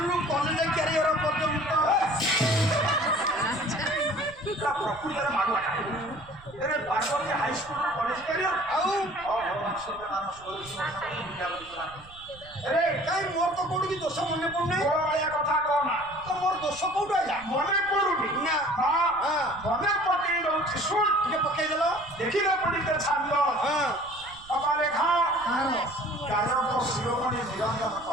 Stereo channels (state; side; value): noise; right; rumble, 22 dB below the sound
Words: କଲେଜ କ୍ୟାରିୟର ପର୍ଯ୍ୟନ୍ତ ପ୍ରକୃତରେ ମାଗୁଆ ଏବେ ପାର୍ବତୀ ହାଇସ୍କୁଲ କଲେଜ କ୍ୟାରିୟର ଆଉ କାଇଁ ମୋର ତ କୋଉଠିକି ଦୋଷ ମନେ ପଡୁନାହିଁ। ଭଳିଆ କଥା କହନା ତ ମୋର ଦୋଷ କୋଉଠୁ ଆଇଲା ମନେ ପଡୁନି ନା ମନେ ପକେଇ ଦଉଛି ଶୁଣ ଟିକେ ପକେଇଦେଲ। ଦେଖିଲେ ପଡିତେ ଛାନ୍ଦ ବାପା ଲେଖା ଗାୟକ ଶିରୋମଣି ନିରଞ୍ଜନ